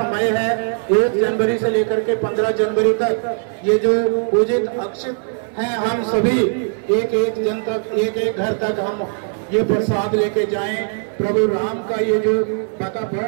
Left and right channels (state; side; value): silent; left; 60 dB below the other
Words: है 1 जनवरी से लेकर के 15 जनवरी तक, ये जो पूजित अक्षित हैं, हम सभी एक जन तक, एक घर तक हम ये प्रसाद लेके जाएं। प्रभु राम का ये जो